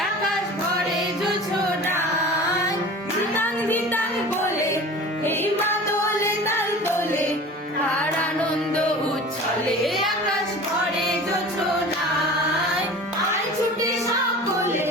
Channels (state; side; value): normal; both; correlation 0.38